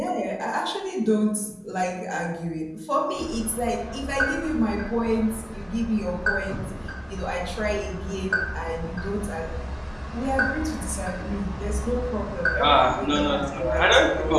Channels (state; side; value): identical; both; correlation 1.00